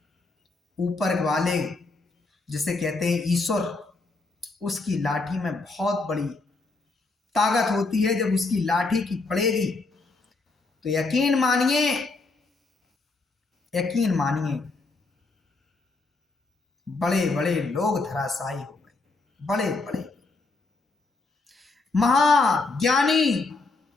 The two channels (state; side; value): quieter; right; 3.6 dB